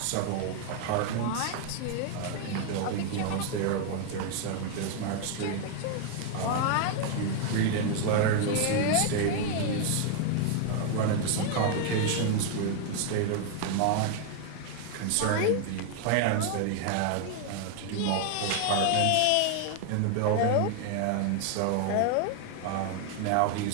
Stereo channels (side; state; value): both; different; correlation 0.00